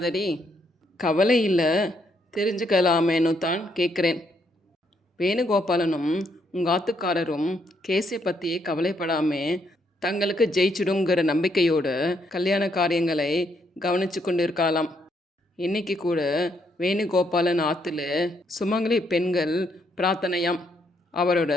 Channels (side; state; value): both; normal; correlation 0.74